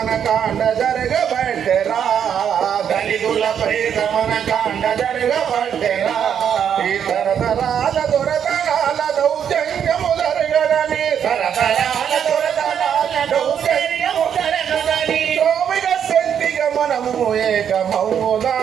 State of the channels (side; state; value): left; quieter; 8.4 dB